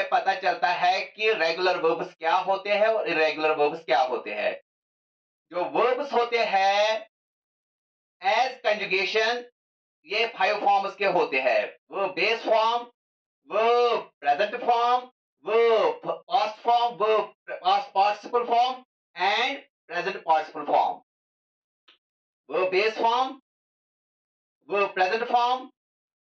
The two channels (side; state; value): both; identical; correlation 1.00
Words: पता चलता है कि रेगुलर वर्ब्स क्या होते हैं और इरेगुलर वर्ब्स क्या होते हैं। जो वर्ब्स होते हैं एज कंजुगेशन, ये 5 फॉर्म्स के होते हैं। वो बेस फॉर्म, वो प्रेजेंट फॉर्म, वो पास्ट फॉर्म, वो past participle form and present participle form. वो बेस फॉर्म, वो प्रेजेंट फॉर्म,